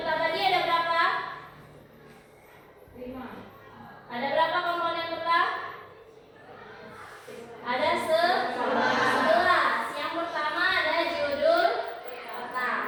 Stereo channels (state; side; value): identical; both; correlation 1.00